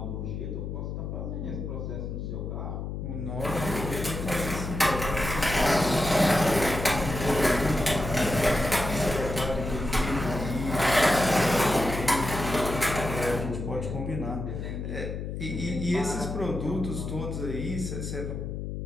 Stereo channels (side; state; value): left; noise; hum, 5 dB below the sound